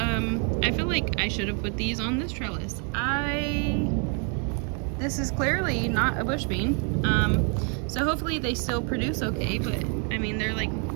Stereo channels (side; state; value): left; quieter; 38.3 dB